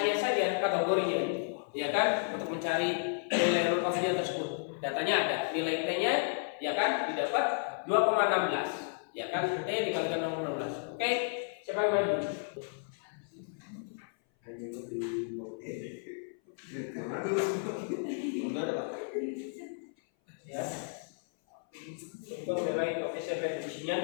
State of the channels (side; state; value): right; silent; 56 dB below the other